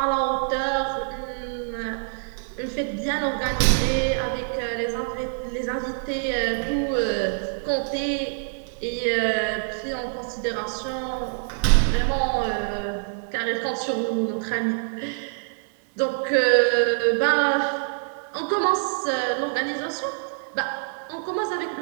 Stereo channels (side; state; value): left; silent; digital silence